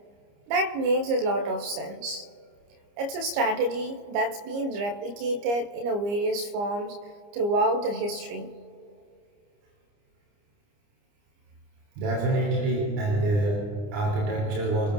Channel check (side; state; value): left; late; 29 ms